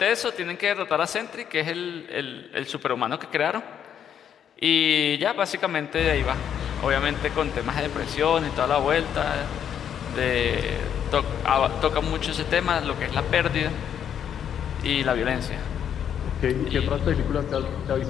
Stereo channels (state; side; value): quieter; right; 8.9 dB